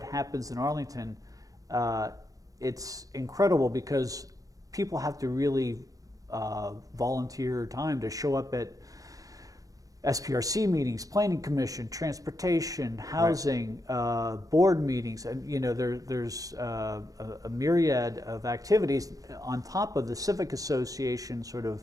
happens in Arlington, it's incredible because people have to really volunteer time to show up at SPRC meetings, Planning Commission, Transportation, Housing, board meetings, and there's a myriad of activities on top of the Civic Association sort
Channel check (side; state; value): left; late; 0.17 ms